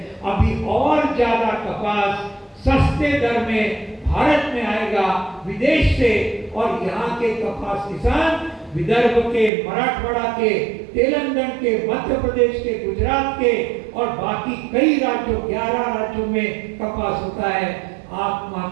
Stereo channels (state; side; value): drops out; left; at 9.5 s